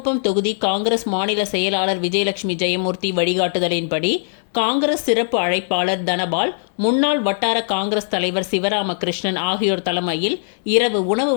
தொகுதி காங்கிரஸ் மாநில செயலாளர் விஜயலட்சுமி ஜெயமூர்த்தி வழிகாட்டுதலின்படி காங்கிரஸ் சிறப்பு அழைப்பாளர் தனபால், முன்னாள் வட்டார காங்கிரஸ் தலைவர் சிவராமகிருஷ்ணன் ஆகியோர் தலைமையில் இரவு உணவு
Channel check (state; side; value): silent; right; digital silence